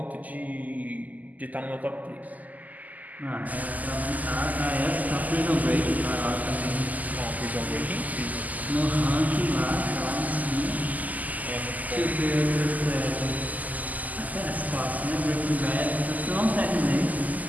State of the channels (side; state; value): left; late; 0.079 ms